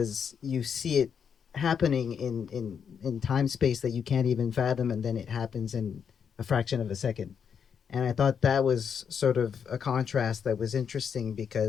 you see it happening in time space that you can't even fathom, and then it happens in a fraction of a second. And I thought that was sort of a contrast that was interesting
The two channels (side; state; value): right; quieter; 7.2 dB